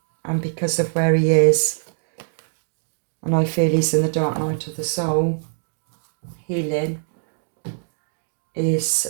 and because of where he is, and I feel he's in the dark night of the soul, healing,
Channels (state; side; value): silent; left; digital silence